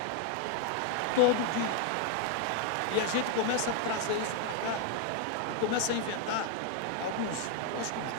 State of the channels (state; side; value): different; both; correlation 0.00